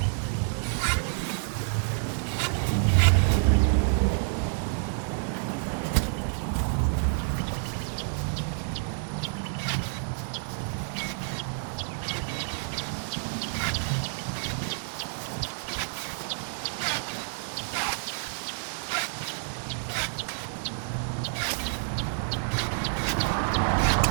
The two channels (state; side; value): silent; left; digital silence